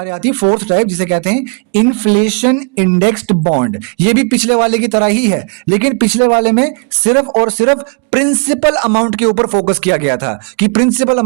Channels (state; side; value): quieter; left; 39.7 dB